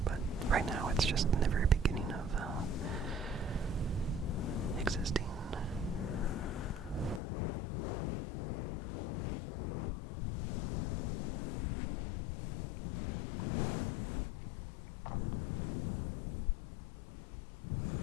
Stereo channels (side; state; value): right; drops out; at 7.2 s